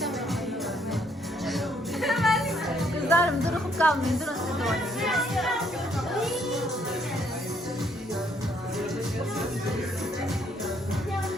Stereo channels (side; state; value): both; normal; correlation 0.68